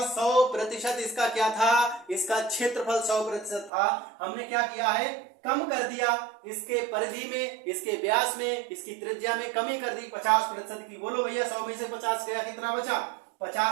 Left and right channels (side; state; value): left; drops out; at 3.7 s